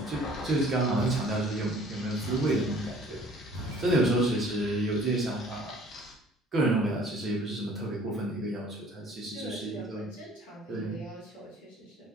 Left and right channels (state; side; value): normal; both; correlation 0.53